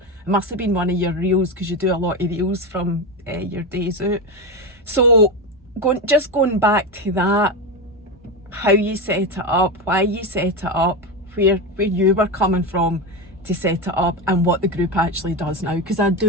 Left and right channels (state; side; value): normal; both; correlation 0.16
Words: it must have been one of your reels, because you do a lot of reels from your days out. So going back to that, how you set it up, why you set it up, where you were coming from to set it up, and what the group actually does now, because I